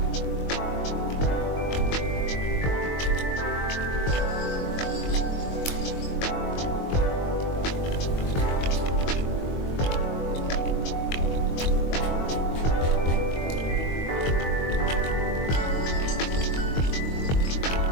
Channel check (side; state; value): right; late; 22 ms